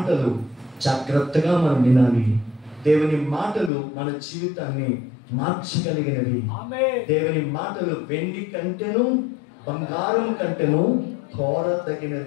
జాగ్రత్తగా మనం వినాలి. దేవుని మాటలు మన జీవితాన్ని మార్చగలిగినవి. దేవుని మాటలు వెండి కంటేను బంగారం కంటేను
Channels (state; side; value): drops out; right; at 3.7 s